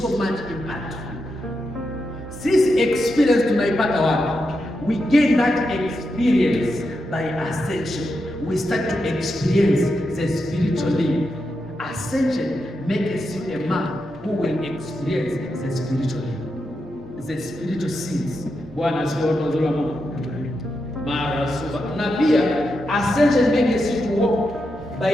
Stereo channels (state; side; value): normal; both; correlation 0.86